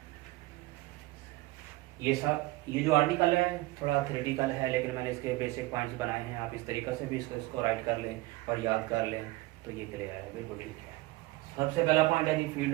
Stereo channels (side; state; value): left; quieter; 19.5 dB